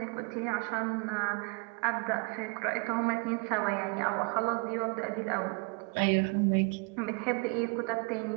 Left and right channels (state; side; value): quieter; left; 31.5 dB